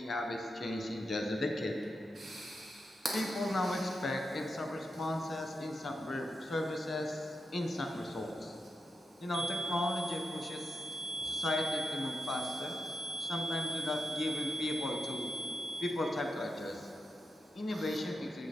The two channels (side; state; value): both; normal; correlation 0.87